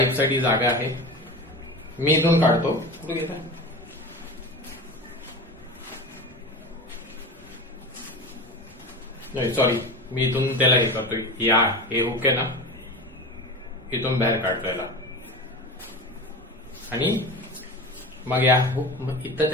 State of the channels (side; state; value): both; normal; correlation 0.30